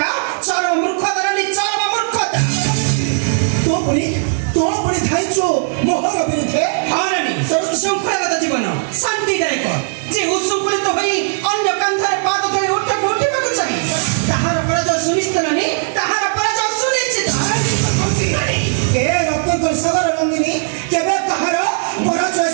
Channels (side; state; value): left; silent; digital silence